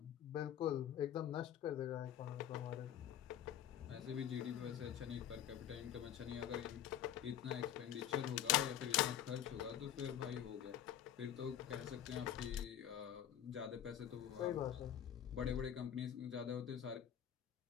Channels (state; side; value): quieter; right; 10.5 dB